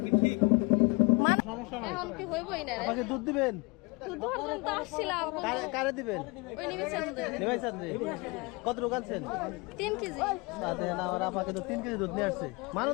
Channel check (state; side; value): quieter; right; 27.4 dB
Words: কি ঠিক? সমস্যা নাই। এখন কি হইবই না রে। আমাকে দুধ দিবেন? তুই দুজন তো আসছিলাম। কারে দিবেন? ওই নিমিষে আমাদের। নিমাই চাঁদনি কত রোগ আনছেন? 3 কেজি। তাতে না আমার আপাকে তো 3 কেজি দুধ নিয়ে আসছে।